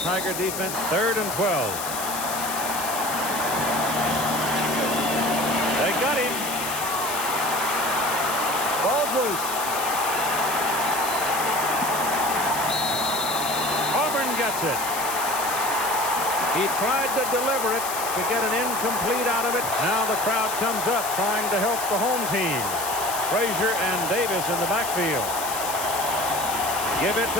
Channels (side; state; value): left; noise; hiss, 6 dB below the sound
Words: defense. 3rd and 12. They got him. Ball's loose. Auburn gets it. He tried to deliver it to get an incomplete out of it. Now the crowd comes up trying to help the home team. Frazier and Davis in the backfield. Give it